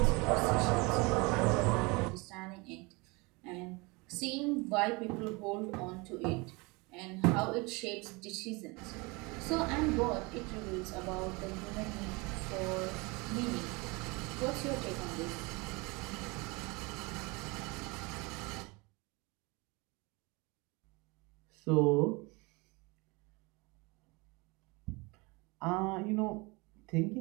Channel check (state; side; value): quieter; left; 26.6 dB